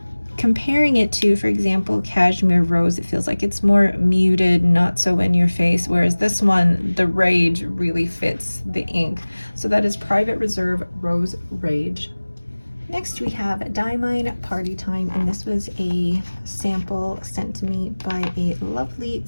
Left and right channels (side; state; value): both; inverted; correlation -1.00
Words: comparing it to, for example, Cashmere Rose, it feels like it's more muted, not so in your face, whereas this one, the Rage, really fits the ink. So that is Private Reserve Rose Rage. Next we have Diamine Party Time, and this was a sample sent to me by a lovely